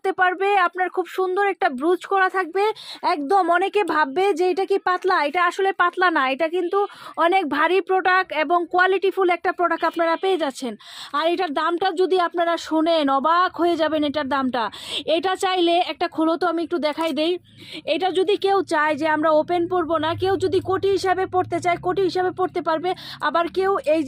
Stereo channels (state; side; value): identical; both; correlation 1.00